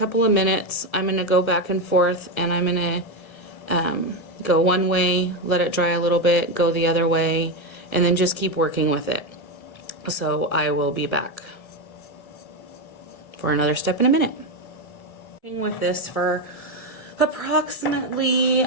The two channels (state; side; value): late; right; 1.2 ms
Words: of minutes I'm going to go back and forth, and I'm going to go one way, let it dry a little bit, go the other way, and then just keep working with it. So I will be back for another step in a minute. Working with this for approximately,